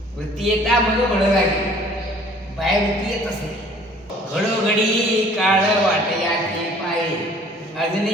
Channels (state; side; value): normal; both; correlation 0.54